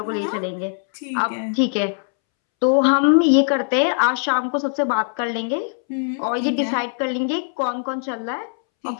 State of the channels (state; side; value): silent; right; 65 dB below the other